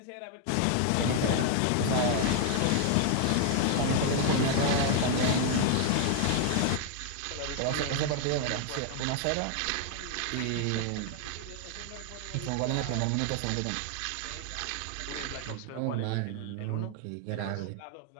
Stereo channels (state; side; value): different; both; correlation 0.00